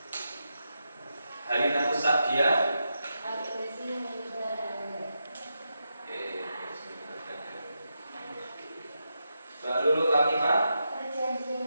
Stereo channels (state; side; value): inverted; both; correlation -0.86